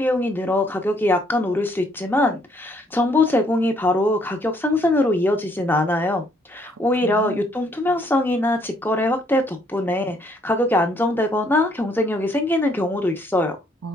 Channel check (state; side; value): normal; both; correlation 0.67